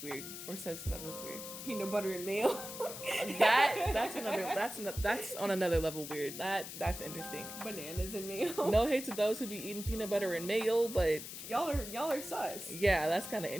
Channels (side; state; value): left; noise; hiss, 9 dB below the sound